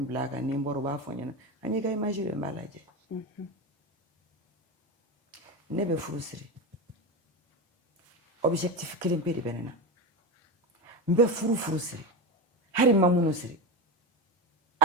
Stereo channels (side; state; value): both; normal; correlation 0.19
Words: bila a kan ni n bɔra u b'a fɔ n ɲɛna an y'i ka image de n b'a lajɛ ne bɛ furu siri objectif kelen pe de bɛ ne na n bɛ furu siri hali n ma minnu siri